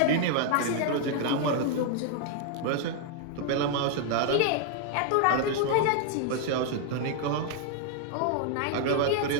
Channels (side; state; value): both; different; correlation 0.00